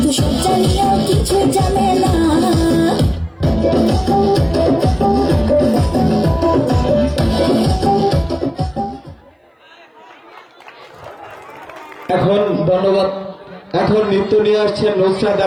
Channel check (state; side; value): identical; both; correlation 1.00